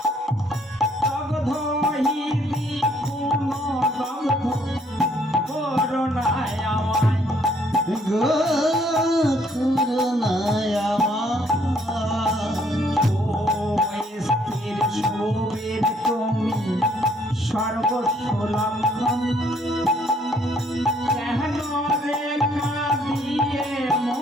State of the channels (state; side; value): normal; both; correlation 0.65